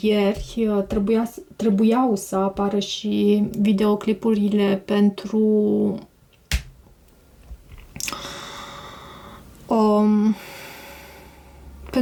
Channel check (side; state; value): both; identical; correlation 1.00